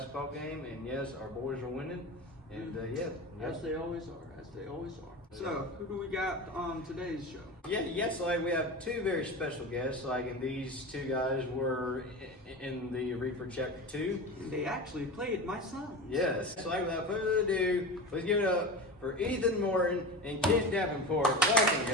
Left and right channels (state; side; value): normal; both; correlation 0.28